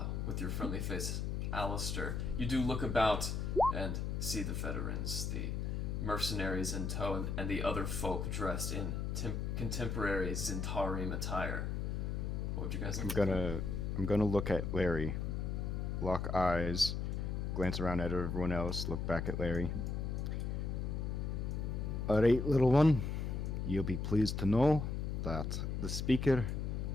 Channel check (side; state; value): left; noise; hum, 2 dB below the sound